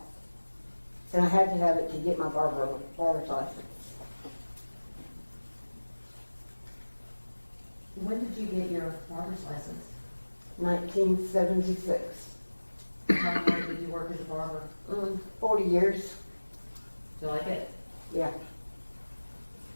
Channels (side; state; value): both; inverted; correlation -1.00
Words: And I had to have it to get my barber's license. When did you get your barber's license? 1976. How long did you work as a barber? 40 years, Do you like it? yeah.